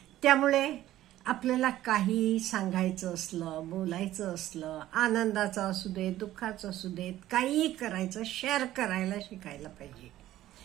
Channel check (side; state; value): left; quieter; 14.1 dB